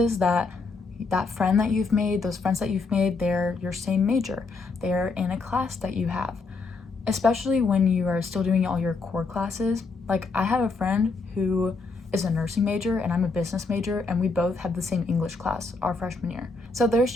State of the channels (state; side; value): quieter; right; 4.0 dB